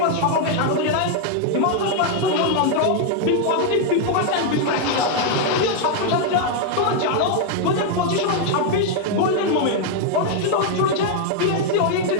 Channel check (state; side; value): different; both; correlation 0.00